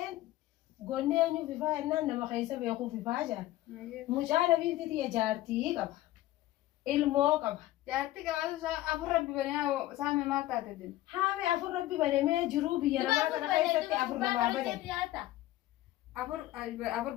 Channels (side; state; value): right; quieter; 15.6 dB